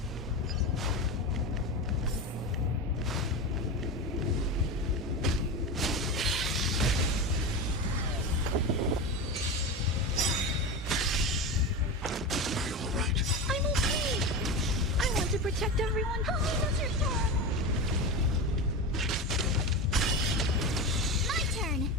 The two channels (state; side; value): normal; both; correlation 0.22